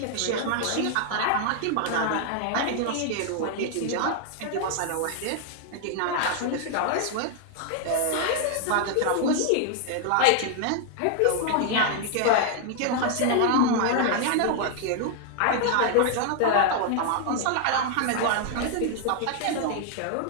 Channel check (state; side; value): different; both; correlation 0.00